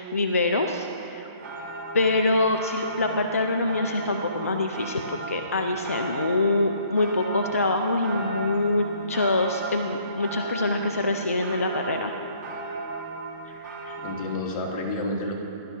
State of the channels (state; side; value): inverted; both; correlation -0.61